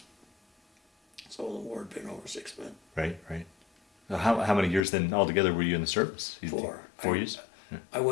So the war had been over 6 months. Right, right. How many years then altogether were you in the service? 4. 4 years? Yeah. I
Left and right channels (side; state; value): right; drops out; at 4.8 s